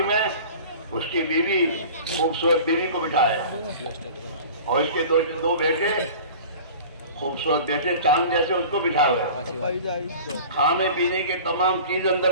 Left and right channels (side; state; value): both; inverted; correlation -0.40